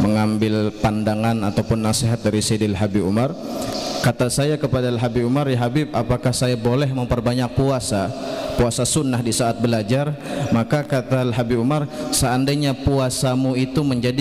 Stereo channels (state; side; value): identical; both; correlation 1.00